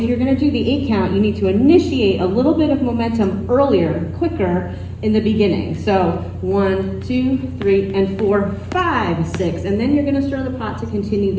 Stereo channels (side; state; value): both; identical; correlation 1.00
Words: you're going to do the 8-count, you need to initiate a little bit of momentum earlier, quicker in the beginning. So 1, 2, 3, and 4, 5, 6, and then you're going to stir the pot to continue